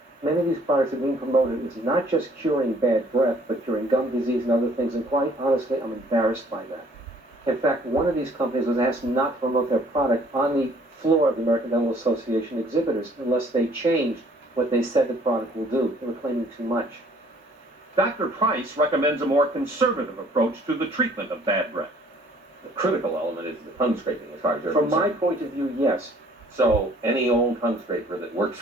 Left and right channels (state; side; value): normal; both; correlation 0.58